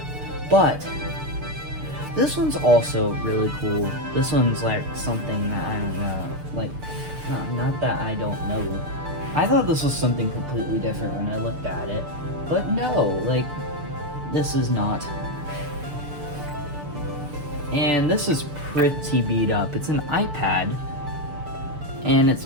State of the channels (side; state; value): left; late; 6.8 ms